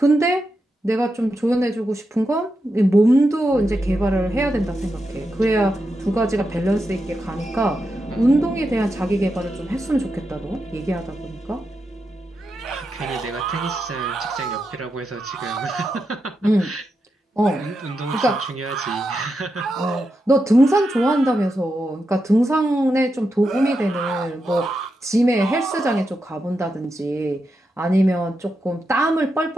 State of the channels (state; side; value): normal; both; correlation 0.87